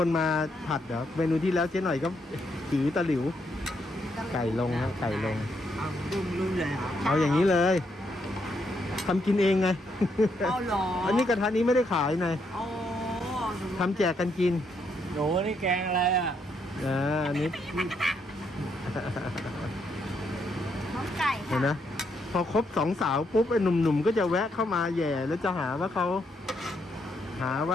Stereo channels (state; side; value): normal; both; correlation 0.76